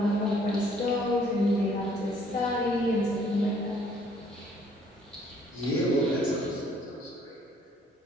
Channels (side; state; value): both; normal; correlation 0.62